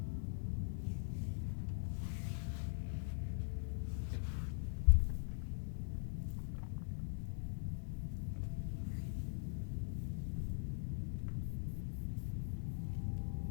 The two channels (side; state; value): right; silent; digital silence